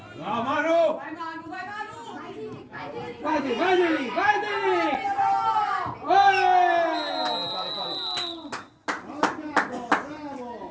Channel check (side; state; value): both; identical; correlation 1.00